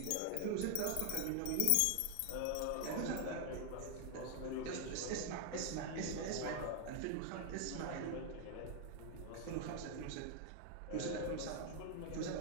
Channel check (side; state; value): both; different; correlation 0.00